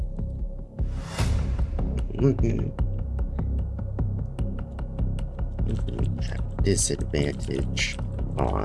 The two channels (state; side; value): identical; both; correlation 1.00